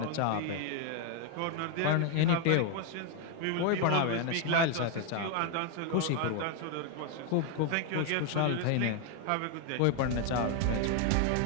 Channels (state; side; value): different; both; correlation 0.01